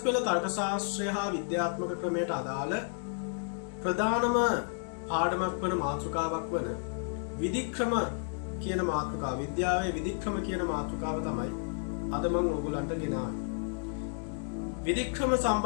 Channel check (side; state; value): right; silent; 57 dB below the other